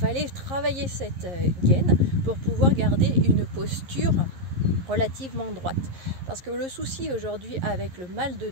travailler cette gaine pour pouvoir garder une posture relativement droite. Parce que le souci aujourd'hui avec le mal de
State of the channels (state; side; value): late; left; 11 ms